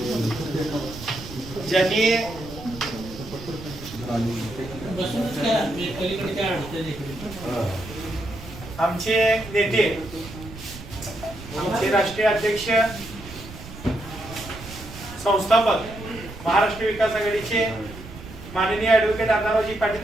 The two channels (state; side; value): noise; right; rumble, 14 dB below the sound